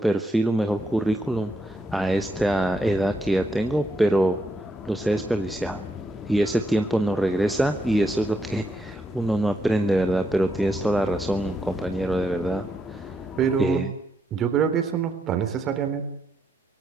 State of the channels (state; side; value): normal; both; correlation 0.79